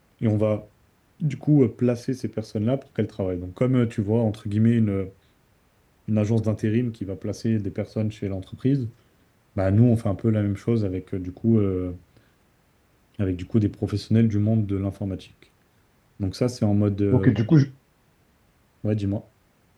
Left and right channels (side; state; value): both; identical; correlation 1.00